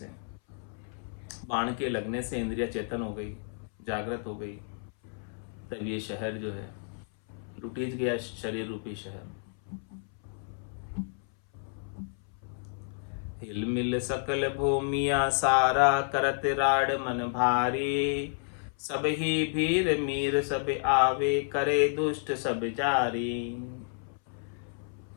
बाण के लगने से इंद्रिया चेतन हो गई, जागृत हो गई, तब ये शहर जो है लुटीज गया, शरीर रूपी शहर। हिल मिल सकल भूमिया सारा, करत राड मन भारी। सब ही भीर मीर सब आवे, करे दुष्ट सब जारी।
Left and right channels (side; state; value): right; silent; 57 dB below the other